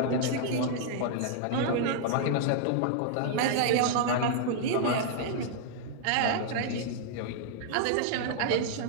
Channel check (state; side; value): different; both; correlation -0.01